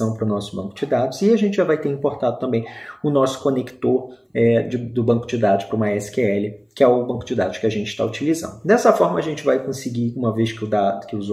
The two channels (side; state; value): both; identical; correlation 1.00